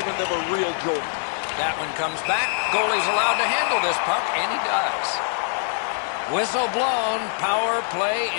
them a real jolt. That one comes back. Goalie's allowed to handle this puck, and he does. Whistle blown. Power play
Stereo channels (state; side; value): silent; right; digital silence